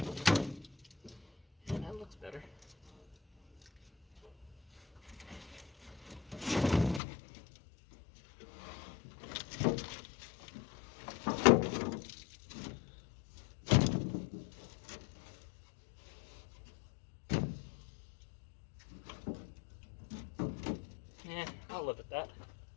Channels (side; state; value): right; drops out; at 7.0 s